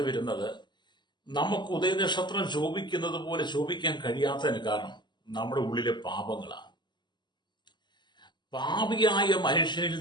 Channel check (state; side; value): late; right; 0.21 ms